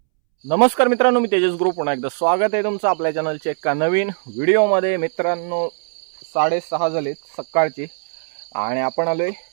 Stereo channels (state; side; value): silent; left; 66 dB below the other